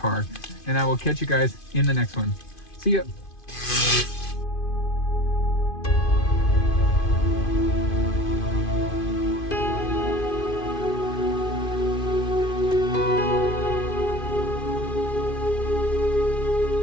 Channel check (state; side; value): late; right; 2.5 ms